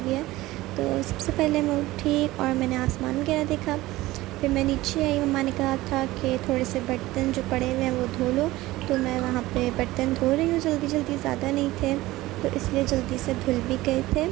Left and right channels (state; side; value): quieter; left; 18.0 dB